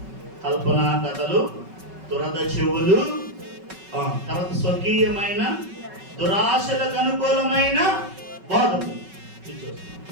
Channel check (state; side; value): late; left; 5.3 ms